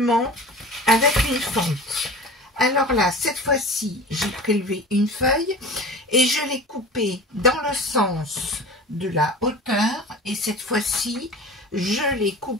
avec une fente. Alors là, cette fois-ci, j'ai prélevé une feuille et je l'ai coupée dans le sens de la hauteur. Et cette fois-ci, je l'ai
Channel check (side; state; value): both; normal; correlation 0.37